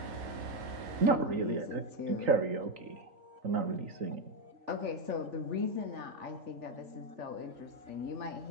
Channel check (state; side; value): late; left; 3.9 ms